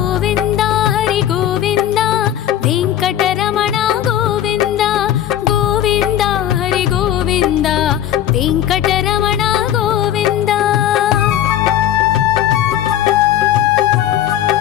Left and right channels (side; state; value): right; quieter; 11.2 dB